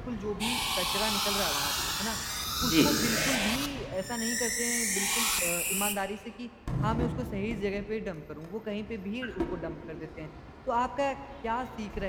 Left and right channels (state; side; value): identical; both; correlation 1.00